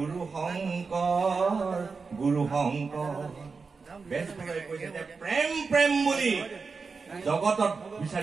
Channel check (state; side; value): quieter; left; 4.7 dB